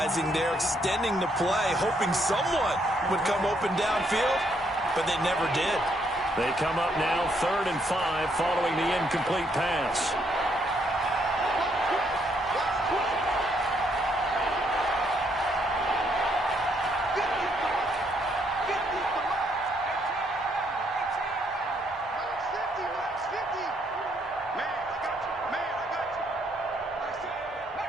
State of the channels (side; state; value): both; normal; correlation 0.72